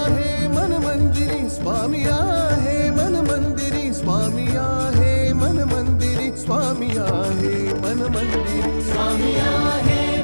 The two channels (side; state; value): both; inverted; correlation -1.00